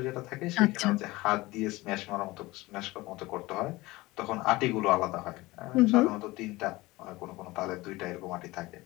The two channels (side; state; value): right; quieter; 20.4 dB